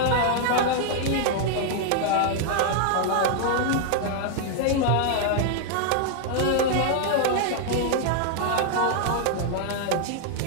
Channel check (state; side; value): different; both; correlation 0.00